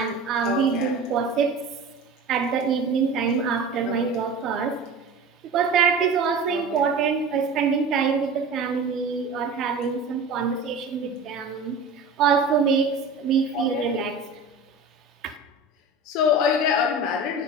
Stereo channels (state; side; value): quieter; left; 3.4 dB